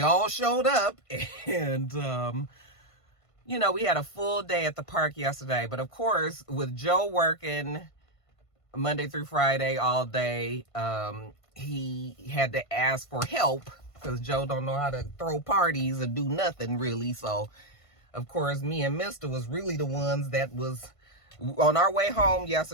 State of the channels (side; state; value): right; late; 1.5 ms